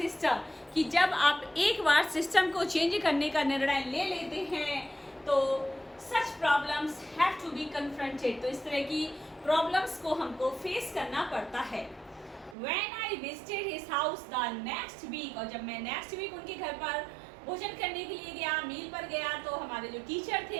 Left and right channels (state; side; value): drops out; left; at 12.6 s